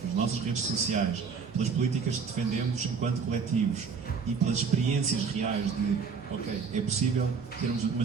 pelas nossas redes sociais, pelas políticas que defendemos enquanto coletivos e pelas experiências reais de, ok, é possível termos uma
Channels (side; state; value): left; quieter; 5.7 dB